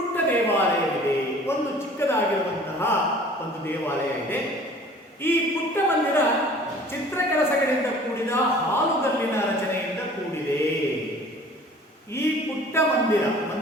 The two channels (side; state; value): both; normal; correlation 0.48